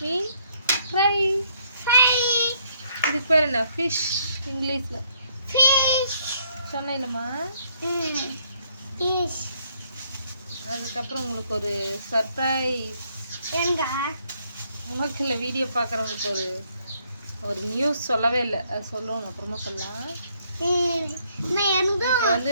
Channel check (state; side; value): inverted; both; correlation -0.69